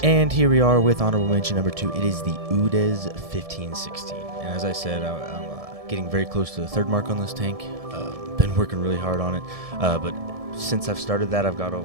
And here we are with honorable mention number 2. It is the UDES 1516. And as I said, I'm getting very close to the 3rd mark on this tank. Been working really hard on it. But since I've started that, I've got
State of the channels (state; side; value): late; left; 1.7 ms